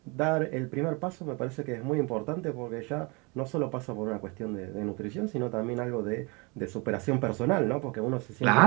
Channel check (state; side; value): quieter; left; 29.2 dB